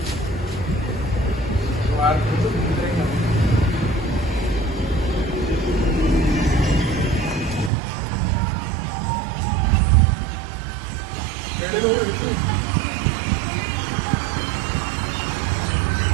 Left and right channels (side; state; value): left; drops out; at 7.7 s